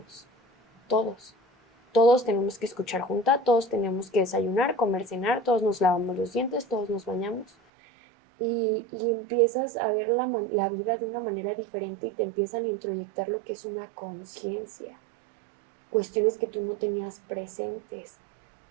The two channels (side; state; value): left; drops out; at 7.5 s